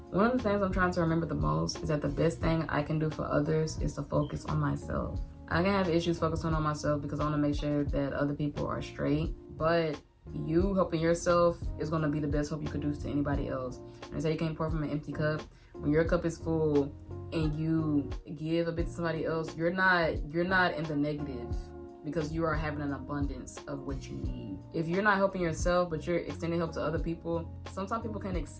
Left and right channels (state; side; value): identical; both; correlation 1.00